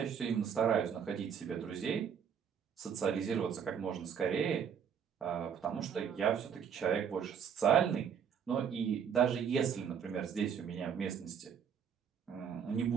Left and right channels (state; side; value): quieter; left; 7.6 dB